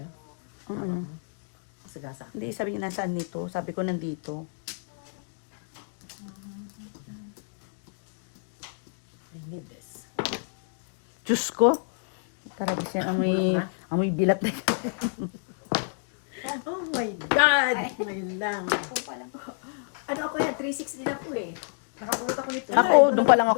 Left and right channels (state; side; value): silent; right; digital silence